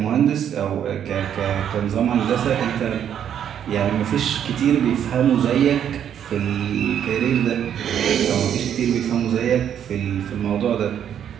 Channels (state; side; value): quieter; left; 9.3 dB